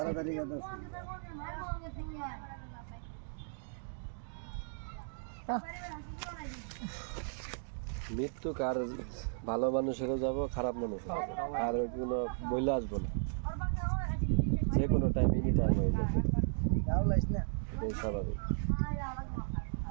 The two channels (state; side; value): silent; left; digital silence